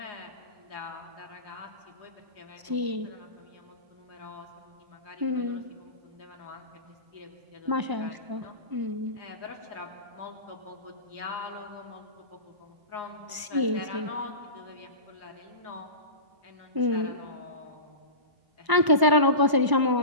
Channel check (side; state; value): left; late; 1.0 ms